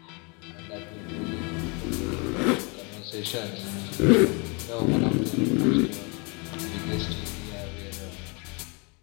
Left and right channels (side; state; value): right; quieter; 31.6 dB